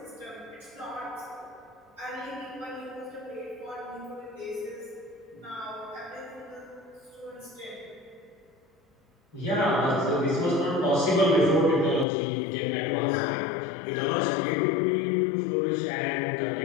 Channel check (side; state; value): right; drops out; at 12.1 s